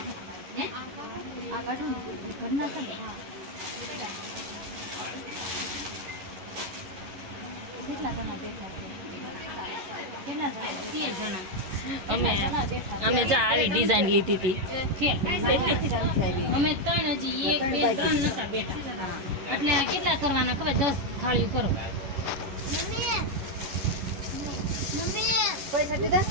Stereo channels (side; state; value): left; late; 11 ms